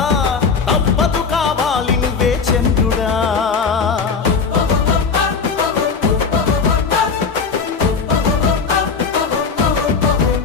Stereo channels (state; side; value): quieter; right; 5.3 dB